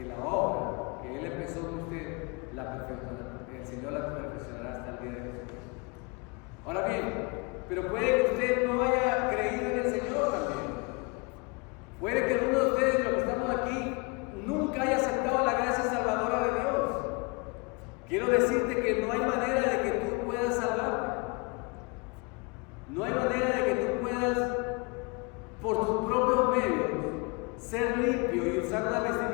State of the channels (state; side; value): quieter; right; 30.5 dB